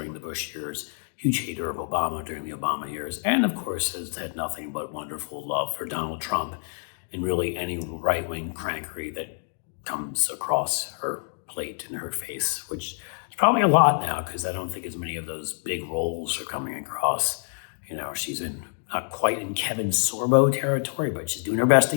the Bush years, huge hater of Obama during the Obama years, and of course has had nothing but wonderful love for Donald Trump and really any right-wing crankery that comes across her plate and her face, which is probably a lot now because I don't think as many of those big roles are coming across. You know, she's not quite in Kevin Sorbo territory, but she's doing her best to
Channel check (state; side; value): silent; right; digital silence